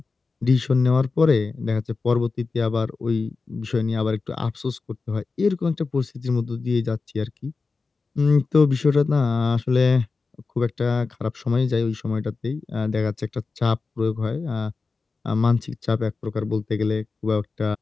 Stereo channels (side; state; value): right; quieter; 4.2 dB